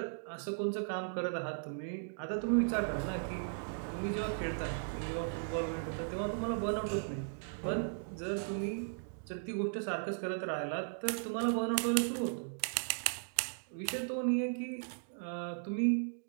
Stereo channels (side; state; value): left; silent; digital silence